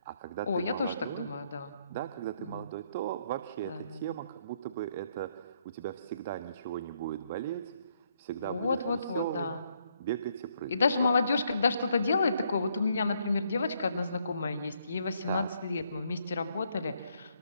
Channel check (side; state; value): both; inverted; correlation -0.72